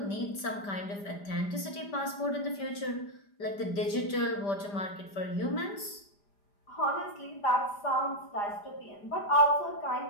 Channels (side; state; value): right; late; 5.1 ms